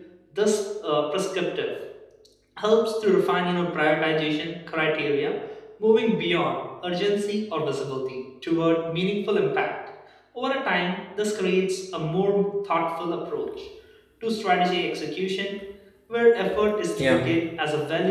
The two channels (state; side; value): identical; both; correlation 1.00